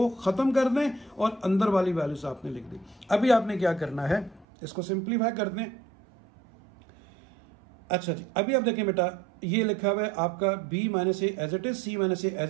खत्म कर दें और अंदर वाली वैल्यूज आपने लिख दी। अभी आपने क्या करना है, इसको सिंप्लीफाई कर दें। अच्छा जी, अभी आप देखें बेटा ये लिखा हुआ है आपका b minus a as it is, c minus a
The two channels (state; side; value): drops out; left; at 4.5 s